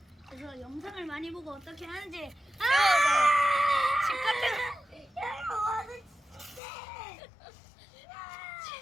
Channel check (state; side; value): drops out; right; at 6.6 s